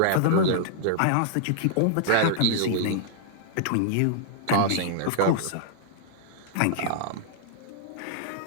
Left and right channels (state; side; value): different; both; correlation -0.01